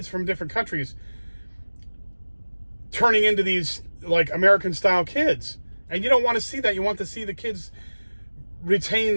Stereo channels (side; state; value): both; inverted; correlation -1.00